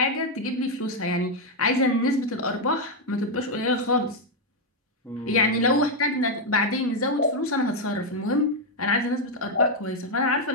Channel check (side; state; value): both; normal; correlation 0.01